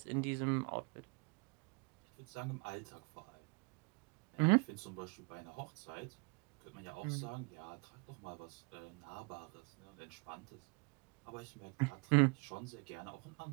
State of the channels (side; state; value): left; quieter; 33.3 dB